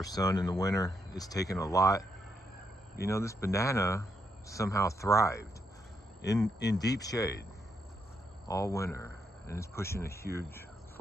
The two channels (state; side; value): normal; both; correlation 0.78